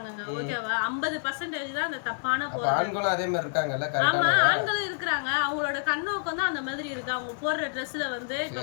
ஓகேவா? 50% தான் அந்த தப்பான. அப்ப ஆண்களும் அதே மாதிரி இருக்காங்கல்ல, கரெக்டானவங்க ஆண்களும் இருக்காங்க. அவங்களோட கண்ணோக்கம் தான் அந்த மாதிரி இருக்கு, அவங்க போடுற ட்ரெஸ்ல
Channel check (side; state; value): right; silent; digital silence